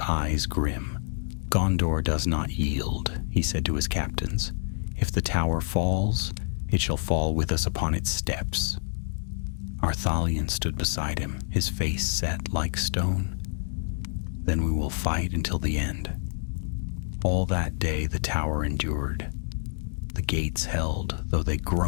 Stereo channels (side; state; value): right; silent; digital silence